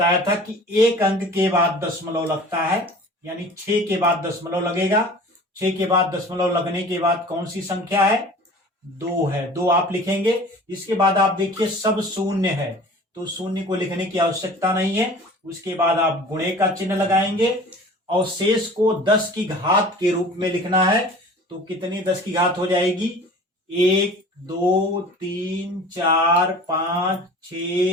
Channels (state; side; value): normal; both; correlation 0.43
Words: था कि एक अंक के बाद दशमलव लगता है, यानी 6 के बाद दशमलव लगेगा। 6 के बाद दशमलव लगने के बाद कौन सी संख्या है? 2 है। 2 आप लिखेंगे। इसके बाद आप देखिए सब शून्य है, तो शून्य को लिखने की आवश्यकता नहीं है। उसके बाद आप गुणे का चिन्ह लगाएंगे और शेष को 10 की घात के रूप में लिखना है। तो कितनी 10 की घात हो जाएगी? 1, 2, 3, 4, 5,